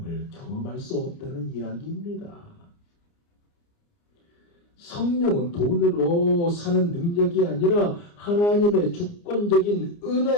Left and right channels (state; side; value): late; right; 29 ms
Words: 경험할 수 없다는 이야기입니다. 성령은 돈으로 사는 능력이 아니라 하나님의 주권적인